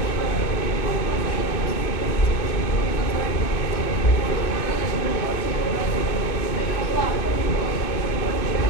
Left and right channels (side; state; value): right; late; 2.6 ms